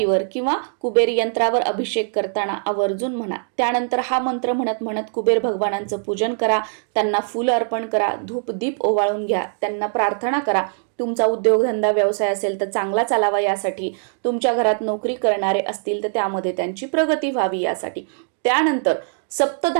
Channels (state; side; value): silent; left; digital silence